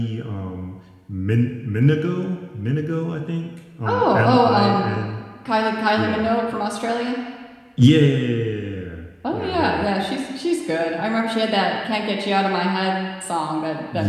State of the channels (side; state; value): both; identical; correlation 1.00